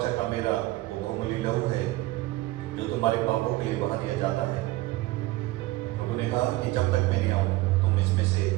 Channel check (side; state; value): left; quieter; 18.6 dB